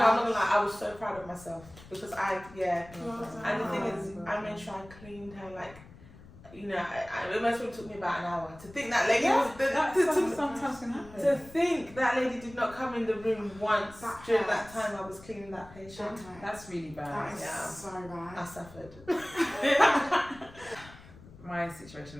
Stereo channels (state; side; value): noise; left; rumble, 20 dB below the sound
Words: gonna lie, I was so proud of myself because and the thing is, I made sure I cleaned her, like, you know, it must have took me about an hour to think that lady was sometimes can happen. to think that lady did not come in the room once during that time I was cleaning that patient. That's really bad. That is so bad. I suffered. My situation